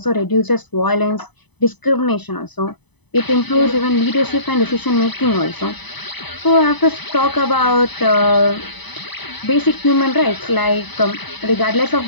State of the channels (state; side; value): late; right; 0.99 ms